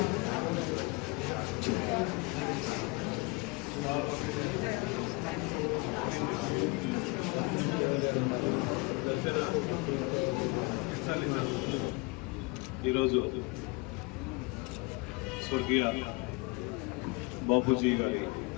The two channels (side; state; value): right; quieter; 27.5 dB